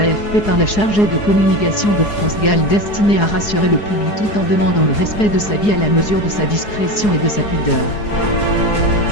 par la chargée de communication de France Gall destinée à rassurer le public tout en demandant le respect de sa vie à la mesure de sa discrétion et de sa pudeur.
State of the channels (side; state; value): right; late; 4.8 ms